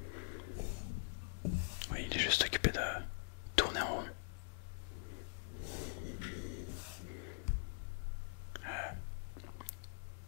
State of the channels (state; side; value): silent; right; digital silence